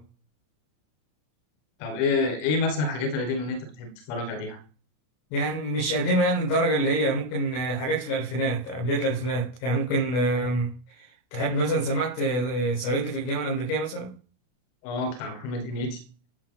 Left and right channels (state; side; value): late; right; 32 ms